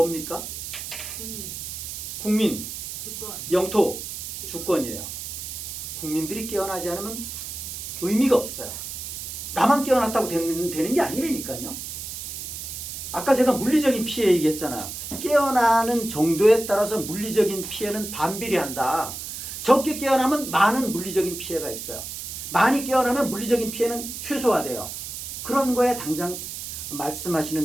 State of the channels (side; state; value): right; noise; hiss, 8 dB below the sound